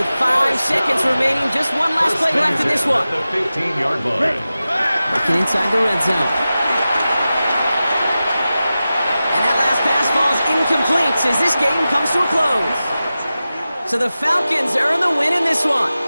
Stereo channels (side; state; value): both; inverted; correlation -0.94